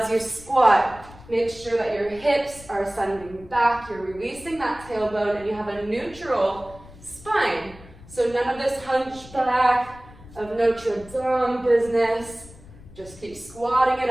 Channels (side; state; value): left; noise; rumble, 20 dB below the sound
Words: you squat, make sure that your hips are sending back, you're releasing that tailbone, and you have a neutral spine. So none of this hunchback of Notre Dame business. Just keep squatting it